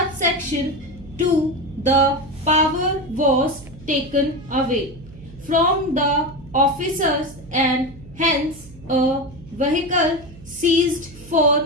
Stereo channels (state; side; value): noise; right; hum, 19 dB below the sound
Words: 2, the power was taken away from the officers and hence a vehicle seized